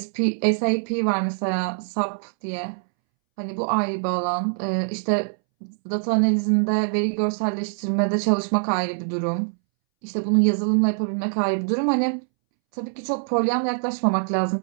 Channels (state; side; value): silent; left; 63 dB below the other